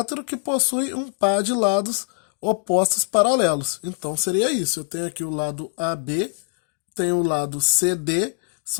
que possui um par de lados opostos paralelos. Então seria isso. Eu tenho aqui o lado AB, tenho o lado CD,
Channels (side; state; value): right; silent; digital silence